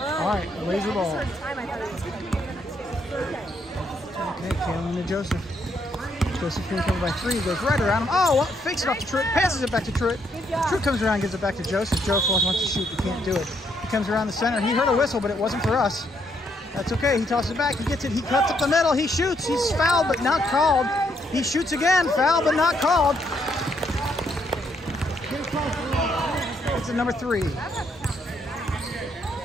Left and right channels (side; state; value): both; normal; correlation 0.74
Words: All right, Blazer ball. Okay, Kalen to Joseph. Joseph being covered by 3. Goes right around him. Oh, fakes it off to Truitt. Passes it back to Truitt. Truitt comes around and gives it back to Joseph. Joseph wants to shoot, but can't do it. He comes around the center. He heard a whistle, but it wasn't for us. That's okay. He tosses it back. He gets it. He cuts up the middle. He shoots. He's fouled, but not called. He shoots again. Foul, but not called. It's a number 3.